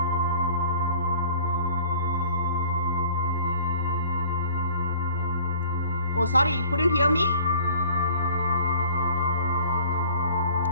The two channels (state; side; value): inverted; both; correlation -0.51